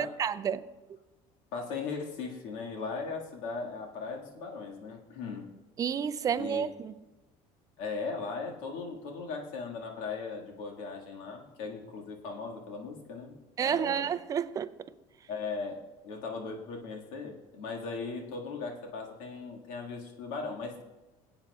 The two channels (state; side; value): normal; both; correlation 0.32